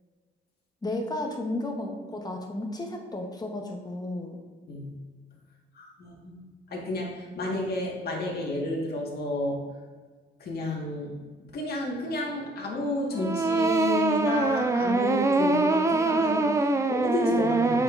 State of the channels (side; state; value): both; normal; correlation 0.62